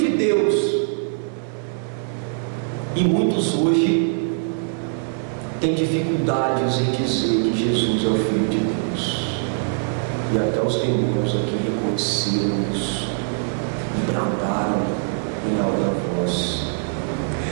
Deus. E muitos hoje têm dificuldades em dizer que Jesus é o Filho de Deus, e até os demônios aqui reconheceram isso e bradaram em alta voz.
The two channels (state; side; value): silent; left; digital silence